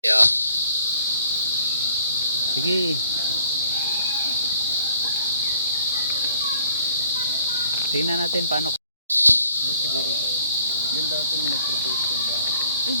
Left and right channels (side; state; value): both; inverted; correlation -0.61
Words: Yeah. Sige. Tingnan natin paano. Siguro ba? Yan daw itong nag-propose yung ba? Ang